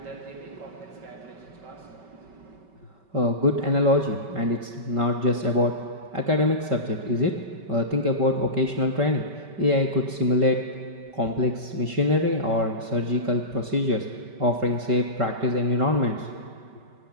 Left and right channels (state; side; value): late; left; 5.2 ms